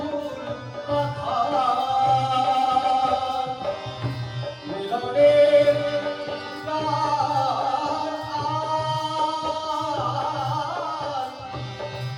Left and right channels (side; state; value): both; identical; correlation 1.00